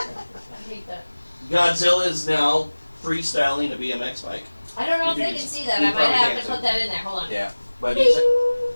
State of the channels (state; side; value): inverted; both; correlation -1.00